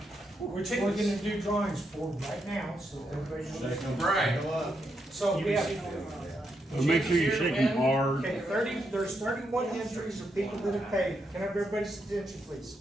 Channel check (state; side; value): normal; both; correlation 0.81